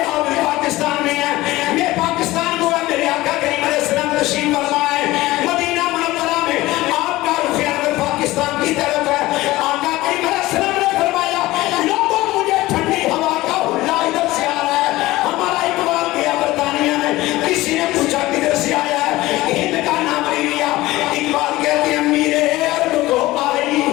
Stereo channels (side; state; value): right; quieter; 18.2 dB